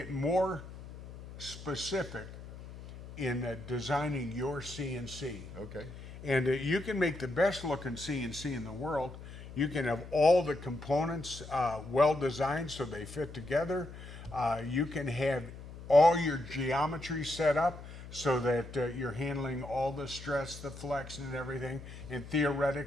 more specific in designing your CNC. Okay. And you can make the best looking CNC in the world. You can have all the components well designed so they fit together. You can have all your geometry set up so that you're handling all the stress, the flex, and everything. And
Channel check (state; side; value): noise; left; hum, 14 dB below the sound